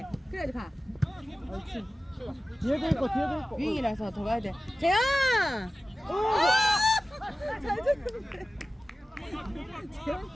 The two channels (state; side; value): normal; both; correlation 0.95